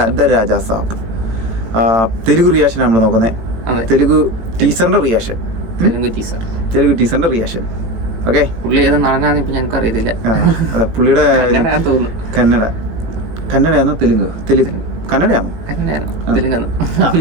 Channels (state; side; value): late; left; 18 ms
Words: രാജാ സാബ്. തെലുഗു റിയാക്ഷൻ നമ്മൾ നോക്കുന്നത്. തെലുഗു ടീസറിന്റെ റിയാക്ഷൻ. തെലുഗു ടീസറിന്റെ റിയാക്ഷൻ. ഓക്കെ, പുള്ളി ഏത് നടനാന്ന് ഇപ്പൊ ഞങ്ങൾക്ക് അറിയത്തില്ല. പുള്ളിയുടെ കന്നഡയാണോ കന്നഡയാണോ